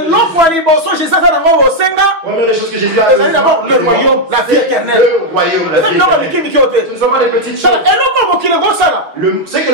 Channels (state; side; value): late; left; 6.2 ms